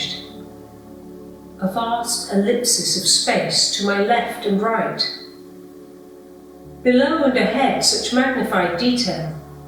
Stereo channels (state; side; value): identical; both; correlation 1.00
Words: A vast ellipsis of space to my left and right. Below and ahead, such magnified detail.